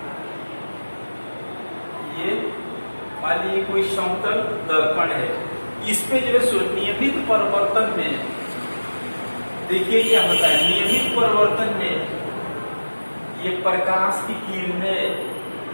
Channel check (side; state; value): both; inverted; correlation -1.00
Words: ये मान लीजिए कोई समतल दर्पण है। इस पे जो है सो नियमित परिवर्तन में देखिए क्या होता है। नियमित परिवर्तन में ये प्रकाश की किरण